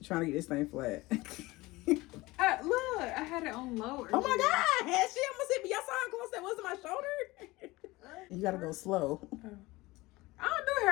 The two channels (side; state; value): right; quieter; 20.7 dB